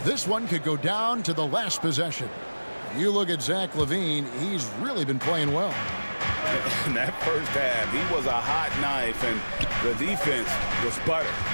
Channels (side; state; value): both; inverted; correlation -1.00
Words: this one could go down to the last possession. You look at Zach LaVine, he's really been playing well. In that first half, he was a hot knife, and the defense was butter,